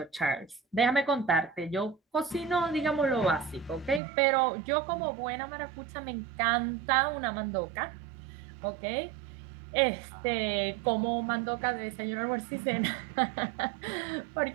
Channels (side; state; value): left; drops out; at 4.0 s